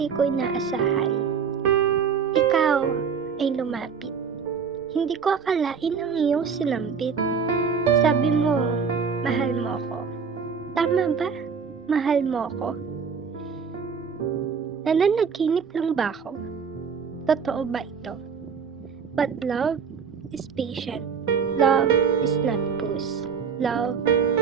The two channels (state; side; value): quieter; left; 6.2 dB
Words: ko inaasahan. Ikaw ay lumapit. Hindi ko akalain ang iyong sinambit. Sabi mo, mahal mo ko. Tama ba? Mahal mo ko? Nananaginip lang ba ako? Totoo ba ito? But love is patient. Love is not puss. Love